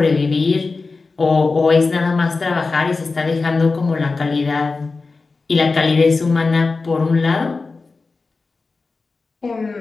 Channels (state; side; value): quieter; right; 4.0 dB